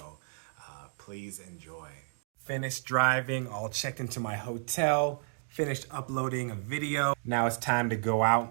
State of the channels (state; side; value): silent; left; digital silence